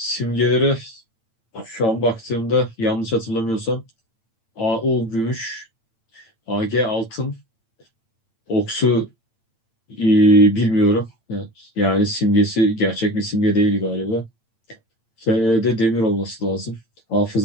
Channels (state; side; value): late; right; 8.8 ms